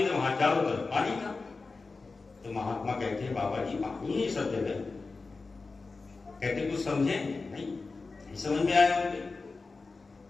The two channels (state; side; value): quieter; right; 4.0 dB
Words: थे वहां चारों तरफ पानी था। तो महात्मा कहते हैं बाबा जी पानी ही सब जगह। कहते कुछ समझे नहीं समझ में आया उनके।